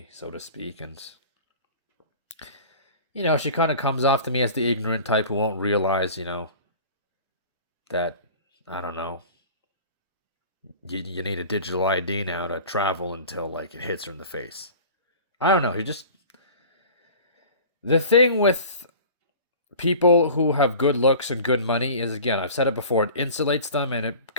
so to speak. And, she kind of comes off to me as the ignorant type who won't realize, that, I don't know, you need a digital ID now to travel until, like, it hits her in the face. I don't know. The thing with people who have good looks and good money is, again, I've said it before, it insulates them and it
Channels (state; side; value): inverted; both; correlation -0.41